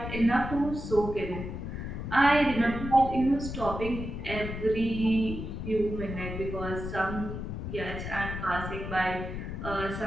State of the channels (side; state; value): left; noise; rumble, 6 dB below the sound